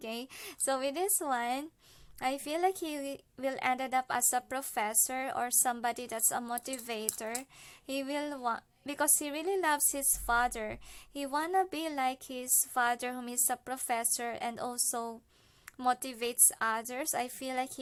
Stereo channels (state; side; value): identical; both; correlation 1.00